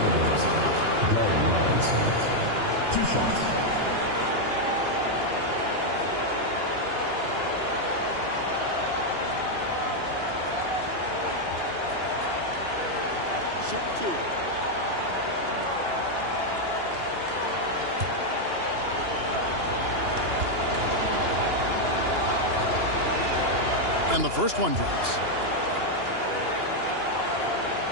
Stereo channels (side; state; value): left; late; 2.9 ms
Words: Glenn Robinson. 2 shots. Shoot 2. And the first one drops.